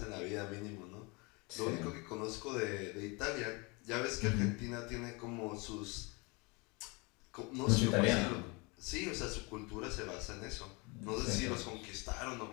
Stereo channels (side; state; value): right; quieter; 28.7 dB